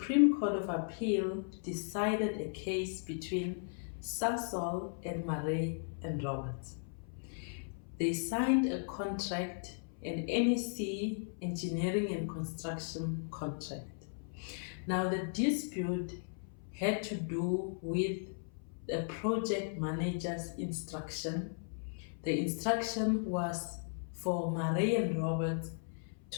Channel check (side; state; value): right; silent; 53 dB below the other